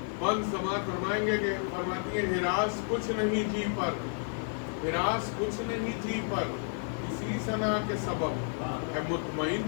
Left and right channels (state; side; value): silent; right; 57 dB below the other